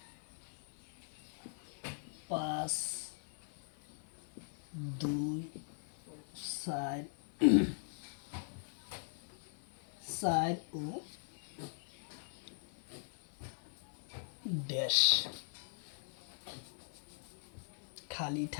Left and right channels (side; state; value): right; silent; 50 dB below the other